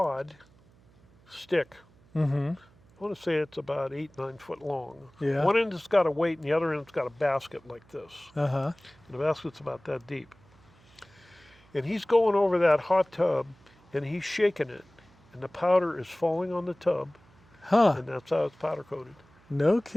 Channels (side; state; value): right; noise; hum, 29 dB below the sound